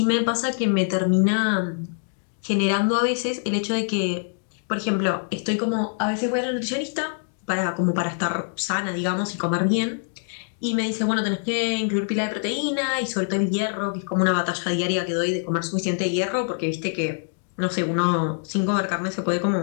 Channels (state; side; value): silent; right; digital silence